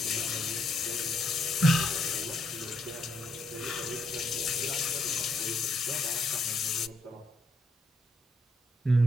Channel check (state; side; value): normal; both; correlation 0.76